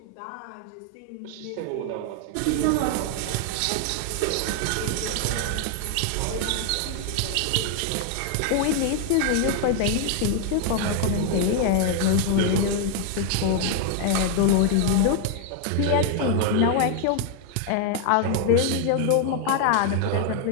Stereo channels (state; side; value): different; both; correlation 0.00